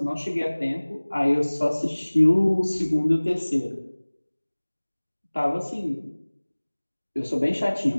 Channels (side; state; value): both; inverted; correlation -1.00